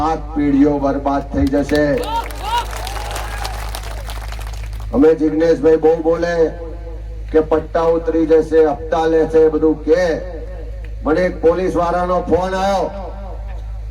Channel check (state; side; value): identical; both; correlation 1.00